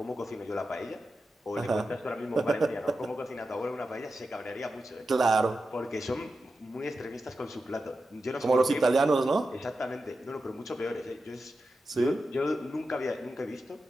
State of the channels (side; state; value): both; normal; correlation 0.91